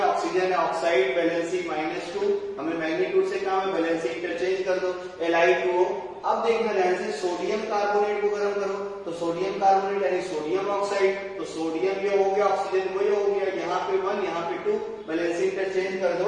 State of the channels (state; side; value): identical; both; correlation 1.00